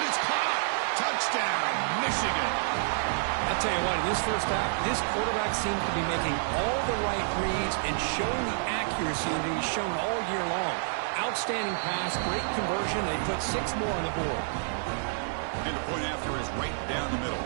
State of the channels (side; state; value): left; silent; 59 dB below the other